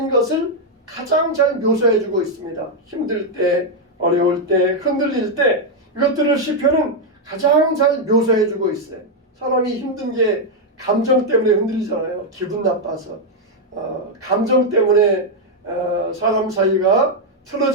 것을 가장 잘 묘사해주고 있습니다. 힘들 때, 어려울 때, 흔들릴 때 이것들을 시편은 가장 잘 묘사해주고 있어요. 사람이 힘든 게 감정 때문에 흔들리잖아요. 기분 나빠서 감정 때문에 사람 사이가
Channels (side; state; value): both; normal; correlation 0.01